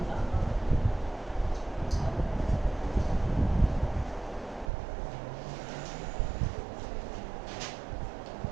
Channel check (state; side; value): drops out; left; at 4.7 s